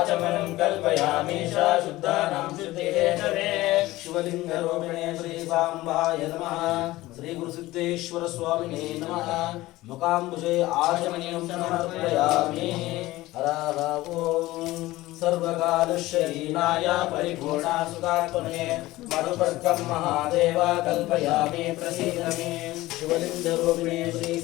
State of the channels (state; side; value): quieter; right; 17.9 dB